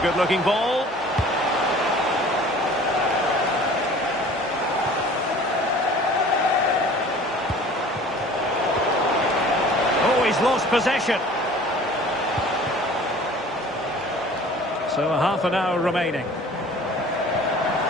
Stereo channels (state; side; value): normal; both; correlation 0.47